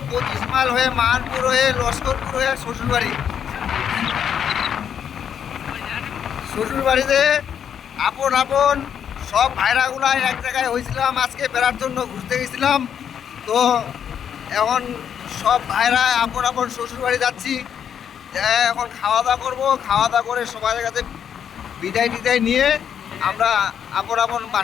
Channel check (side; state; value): right; quieter; 8.4 dB